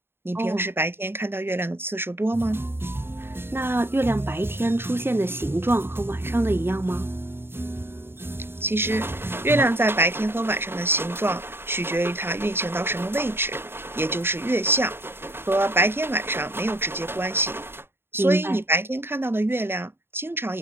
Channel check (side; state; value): left; late; 0.11 ms